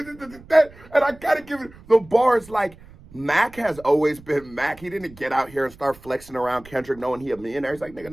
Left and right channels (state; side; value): noise; right; rumble, 22 dB below the sound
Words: I gotta give it the bars like Mack has always been Mack. He didn't get out here and start flexing around Kendrick knowing he a millionaire. He's like, nigga,